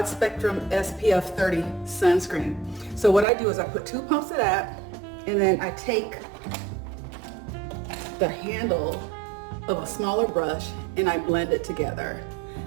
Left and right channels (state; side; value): drops out; left; at 3.2 s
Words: spectrum SPF 30 sunscreen. So what I do is I put 2 pumps of that, and then I take the handle of a smaller brush and I blend it together.